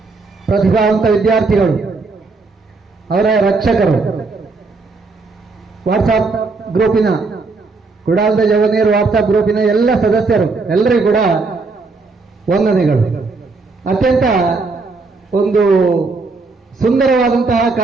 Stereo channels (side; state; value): left; quieter; 3.9 dB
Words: ಪ್ರತಿಭಾವಂತ ವಿದ್ಯಾರ್ಥಿಗಳು, ಅವರ ರಕ್ಷಕರು, ವಾಟ್ಸಾಪ್ ಗ್ರೂಪಿನ ಕುಡಾಲದ ಜವನೇರು ವಾಟ್ಸಾಪ್ ಗ್ರೂಪಿನ ಎಲ್ಲ ಸದಸ್ಯರು, ಎಲ್ಲರಿಗೂ ಕೂಡ ವಂದನೆಗಳು. ಅತ್ಯಂತ ಒಂದು ಸುಂದರವಾದಂತಹ